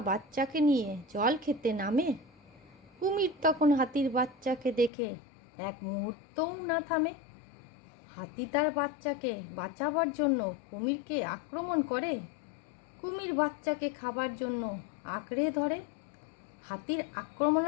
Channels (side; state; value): right; drops out; at 4.9 s